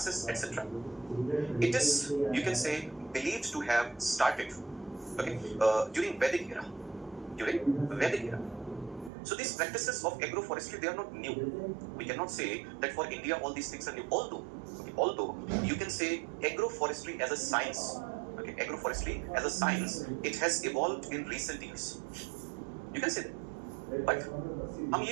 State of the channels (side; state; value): left; drops out; at 9.1 s